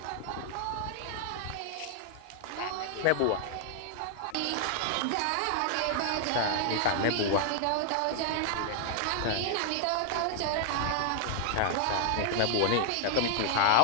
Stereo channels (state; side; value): different; both; correlation 0.00